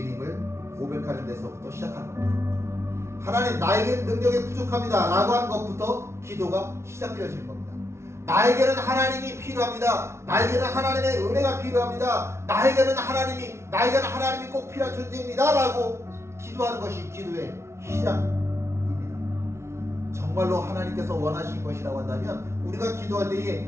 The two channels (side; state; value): left; late; 0.13 ms